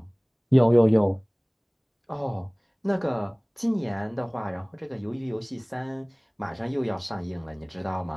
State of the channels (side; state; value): both; identical; correlation 1.00